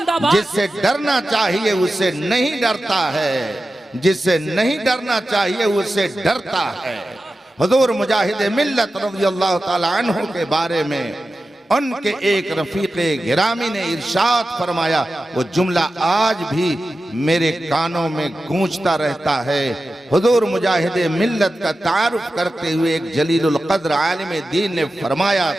जिससे डरना चाहिए उससे नहीं डरता है, जिससे नहीं डरना चाहिए उससे डरता है। हुजूर मुजाहिद मिल्लत रज़ियल्लाहु ताला अन्हु के बारे में उनके एक रफीक़े गिरामी ने इरशाद फरमाया, वो जुमला आज भी मेरे कानों में गूंजता रहता है। हुजूर मुजाहिद मिल्लत का तारुफ करते हुए एक जलीलुल क़द्र आलिम दीन ने फरमाया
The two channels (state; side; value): normal; both; correlation 0.93